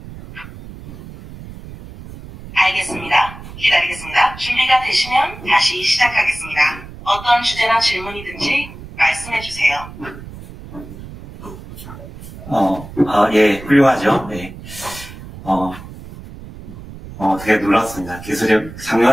알겠습니다. 기다리겠습니다. 준비가 되시면 다시 시작하겠습니다. 어떤 주제나 질문이든지 말씀해주세요. 예, 훌륭하죠. 네. 되게 놀랐습니다. 기술이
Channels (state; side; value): noise; right; rumble, 15 dB below the sound